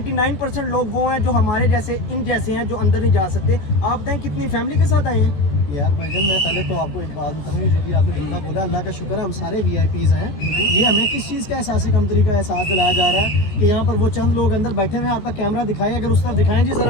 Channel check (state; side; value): late; right; 15 ms